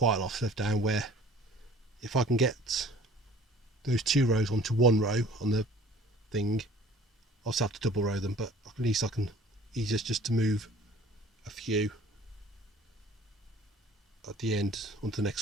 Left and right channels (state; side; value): normal; both; correlation 0.50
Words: a lot of stuff down, where if I can get those 2 rows onto 1 row on the thing, I'll still have to double row them, but at least I can easier just to move a few at the end onto the